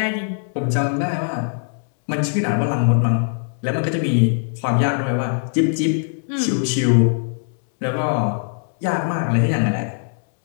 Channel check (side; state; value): right; silent; 65 dB below the other